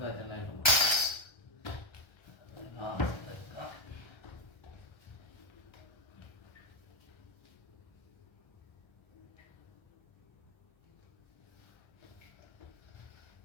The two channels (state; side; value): late; right; 1.3 ms